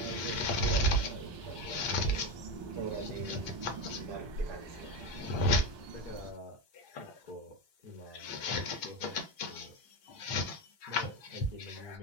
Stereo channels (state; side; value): late; left; 1.2 ms